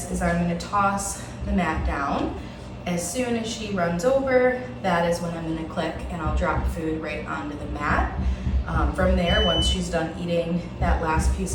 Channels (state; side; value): identical; both; correlation 1.00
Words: is I'm going to toss the mat down. As soon as she runs over, that is when I'm going to click and I'll drop food right onto the mat. From there, once she's done eating that last piece